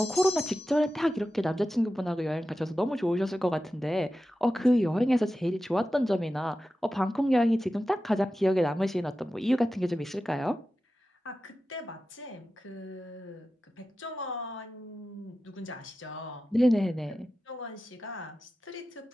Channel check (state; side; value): normal; both; correlation 0.93